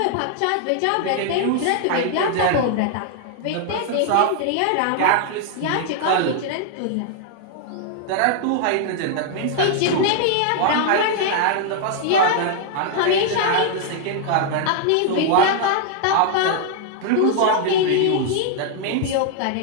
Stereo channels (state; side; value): different; both; correlation 0.00